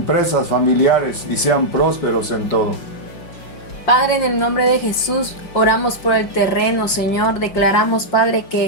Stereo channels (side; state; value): right; late; 5.7 ms